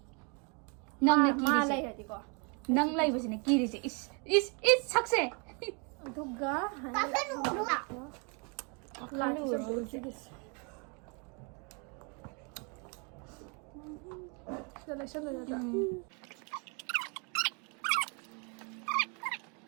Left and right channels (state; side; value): quieter; left; 34.4 dB